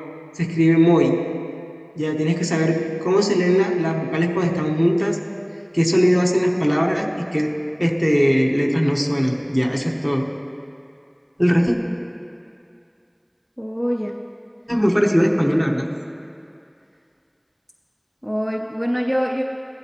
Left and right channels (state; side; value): identical; both; correlation 1.00